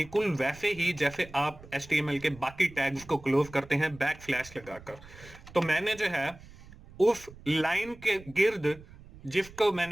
वैसे ही जैसे आप HTML के बाकी टैग्स को क्लोज करते हैं बैक स्लैश लगाकर। तो मैंने जो है उस लाइन के गिर्द जिसको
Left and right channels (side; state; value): right; noise; rumble, 20 dB below the sound